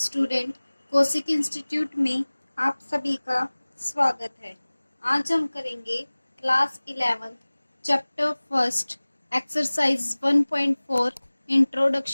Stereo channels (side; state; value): both; inverted; correlation -1.00